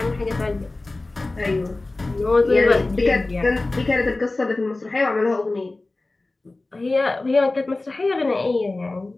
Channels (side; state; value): right; quieter; 3.1 dB